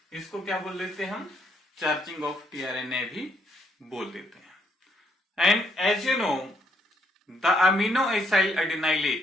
इसको क्या बोल देते हैं हम? चार्जिंग ऑफ टीआरएनए भी बोल देते हैं। And as you know the amino acyl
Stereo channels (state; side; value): normal; both; correlation 0.72